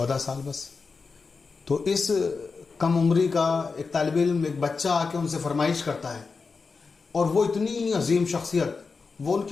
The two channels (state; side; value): quieter; right; 4.6 dB